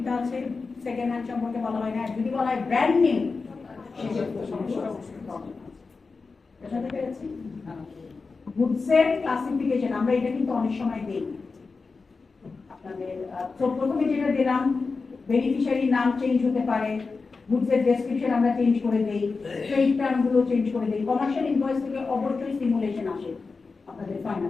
আছে সেকেন্ড হ্যান্ড সম্পর্কে বলা হয় না যদি বলা হয় ব্র্যান্ড নিউ সেক্ষেত্রে সমস্যা বুঝাতে পেরেছি গুডসের ক্লাসিফিকেশন আমরা এটা কিন্তু অনেক সময় দিই আপনাদের প্রথমে যেটা দিলাম বেনিফিশিয়ারি নাম চেঞ্জ হতে পারে গুডসের ডেসক্রিপশন আমরা চেঞ্জ করে দেই ট্রেড টার্ম গুলো চেঞ্জ করে দেই কমার্শিয়াল ইনভয়েস থেকে অবশ্যই সিমুলেশন আসে আপনাদের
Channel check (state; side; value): quieter; right; 4.3 dB